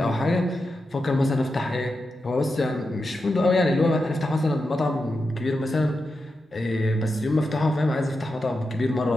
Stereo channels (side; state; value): both; normal; correlation 0.89